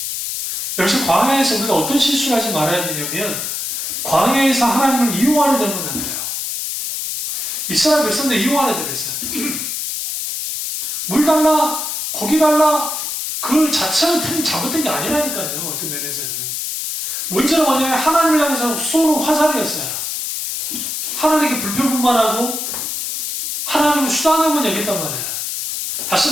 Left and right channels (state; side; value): noise; left; hiss, 3 dB below the sound